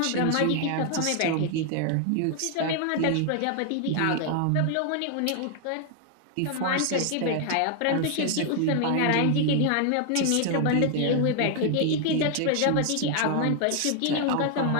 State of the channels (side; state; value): both; different; correlation 0.00